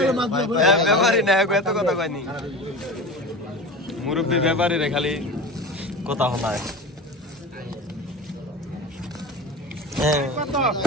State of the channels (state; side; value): normal; both; correlation 0.31